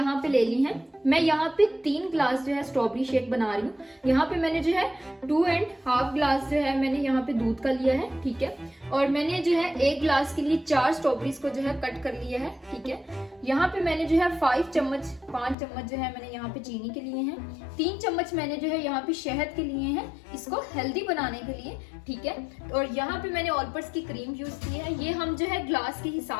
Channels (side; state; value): right; drops out; at 15.6 s